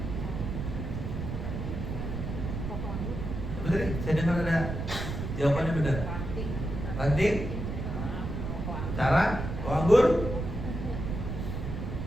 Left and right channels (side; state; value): right; noise; rumble, 4 dB below the sound